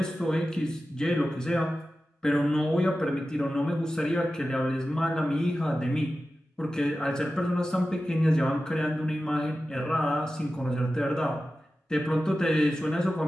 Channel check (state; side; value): normal; both; correlation 0.94